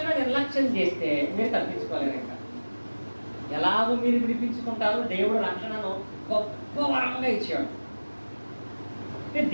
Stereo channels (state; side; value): inverted; both; correlation -1.00